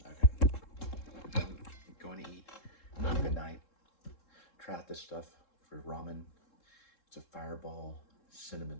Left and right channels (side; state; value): right; late; 3.7 ms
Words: Okay. I'm going to eat. Good night. Try out this stuff for ramen. It's a fireball cinnamon.